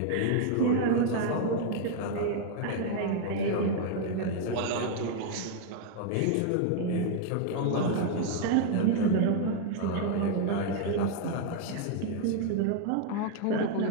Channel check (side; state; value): both; different; correlation 0.00